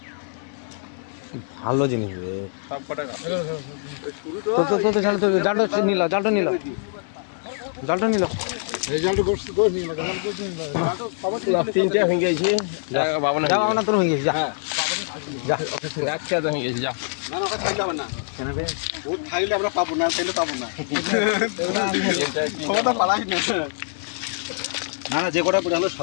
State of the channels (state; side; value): silent; right; 62 dB below the other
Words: ভালো জিনিস রে সব কটা জালটা নিল তিনটে হয়ে গেছে বাবনা যা আমরা তোর হয়ে গেছি যা যা এক খেয়ে হয়ে গেছে যা না না ওটা খাইলে হবে না কেন বে ও খাইলে আমরা পাবো না খাইলে পাবো না সবটা পালাই না না না যে কটা পড়ে হলো